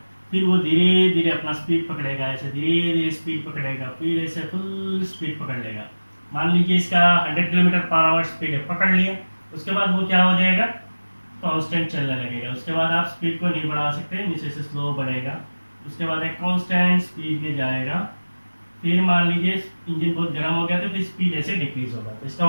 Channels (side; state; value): both; inverted; correlation -1.00